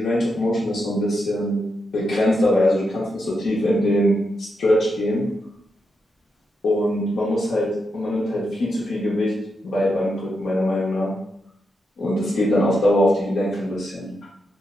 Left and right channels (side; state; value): both; normal; correlation 0.84